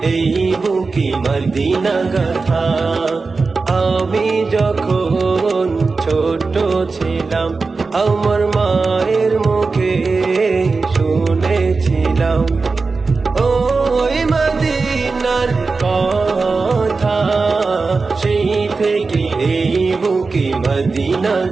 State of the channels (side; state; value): left; quieter; 4.1 dB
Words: এই বুকে মদিনা গাথা। আমি যখন ছোট ছিলাম আমার মায়ের মুখে শুনেছিলাম ওই মদিনার কথা, সেই থেকে এই বুকে মদিনা